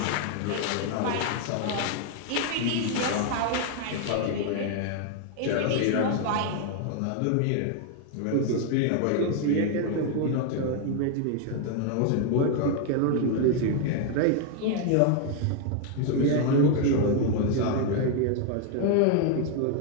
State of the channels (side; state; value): both; different; correlation 0.00